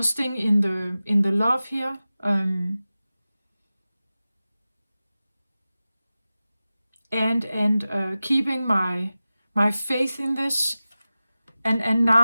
in the love here. and keeping my faith in this. And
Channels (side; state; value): both; inverted; correlation -0.96